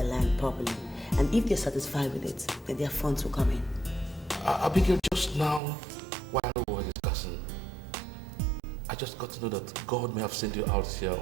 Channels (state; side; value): drops out; left; at 5.6 s